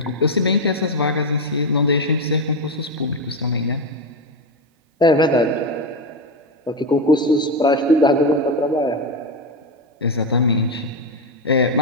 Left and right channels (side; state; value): both; normal; correlation 0.11